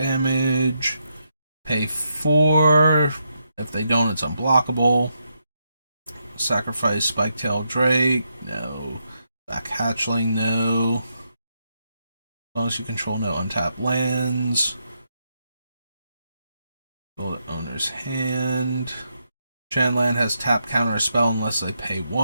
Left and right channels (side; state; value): both; inverted; correlation -0.81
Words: Pay 4. If they don't, it's unblockable. Sacrifice Spiketail Drake. No. Black Hatchling. No. As long as you control no untapped lands. Build an owner's hand. Shanland has tap counter a spell unless they pay